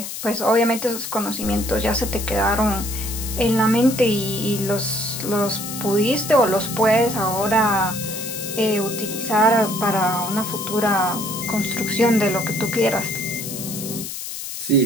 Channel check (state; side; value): noise; left; hiss, 7 dB below the sound